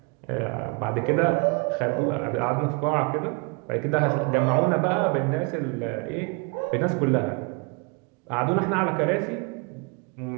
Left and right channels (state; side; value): quieter; left; 31.0 dB